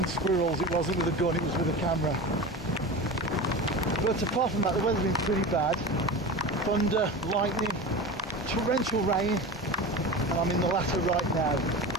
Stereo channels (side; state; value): both; normal; correlation 0.29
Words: squirrels, it wasn't with a gun, it was with a camera. But apart from that, the weather's been pretty bad. Thunder, lightning, torrential rain, and I'm in the latter right now.